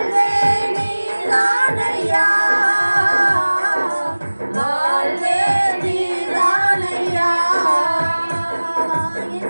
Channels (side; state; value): both; inverted; correlation -1.00